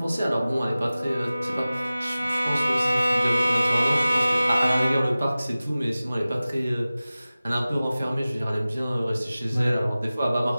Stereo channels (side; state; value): both; inverted; correlation -0.97